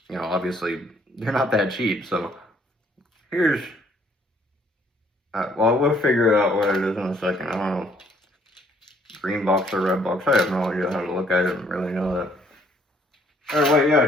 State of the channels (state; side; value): normal; both; correlation 0.64